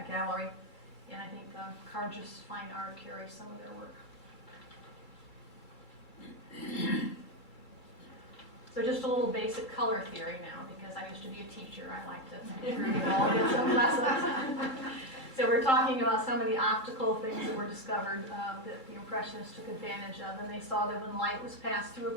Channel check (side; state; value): left; late; 2.3 ms